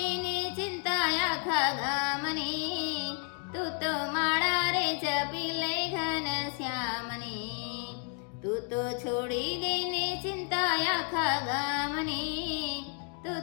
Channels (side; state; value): right; quieter; 38.6 dB